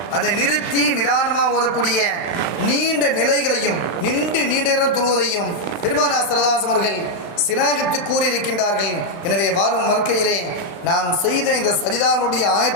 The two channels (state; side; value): late; right; 34 ms